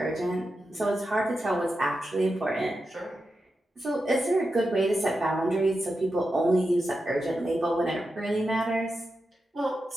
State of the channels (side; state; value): both; normal; correlation 0.89